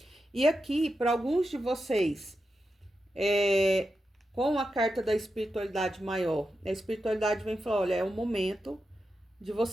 E aqui, para alguns de vocês, com a carta da espiritualidade maior, a espiritualidade vem falar, olha, é o momento de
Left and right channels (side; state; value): both; normal; correlation 0.89